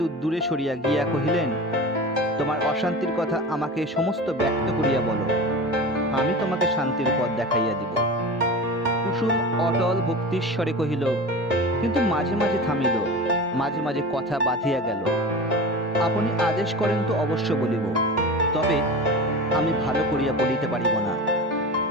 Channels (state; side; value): normal; both; correlation 0.30